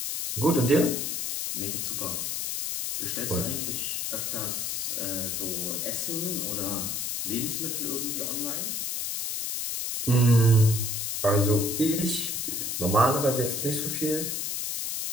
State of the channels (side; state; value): left; noise; hiss, 2 dB below the sound